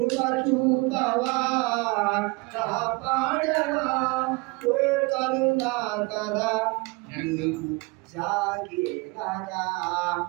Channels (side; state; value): left; quieter; 26.3 dB